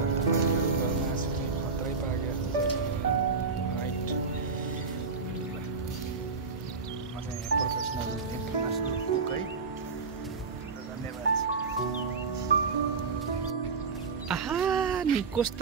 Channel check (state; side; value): quieter; left; 4.7 dB